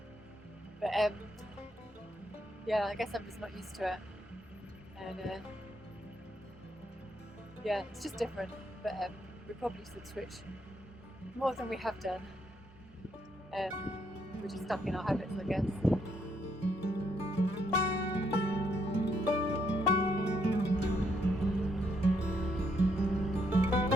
But yeah, I guess I'm just not used to it. And yeah, it's just different. But we probably should switch more than we have done. We're just stuck in our habits, I guess.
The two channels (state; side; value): normal; both; correlation 0.74